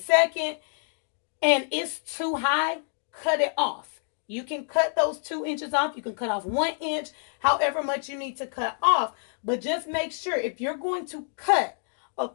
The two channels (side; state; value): right; silent; 60 dB below the other